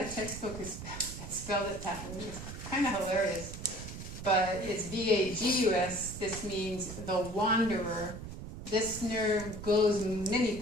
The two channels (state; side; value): noise; right; rumble, 10 dB below the sound